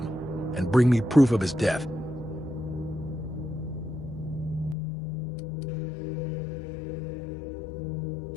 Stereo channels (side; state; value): right; drops out; at 4.8 s